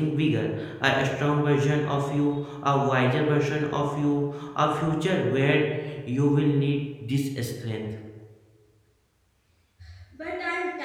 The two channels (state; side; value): identical; both; correlation 1.00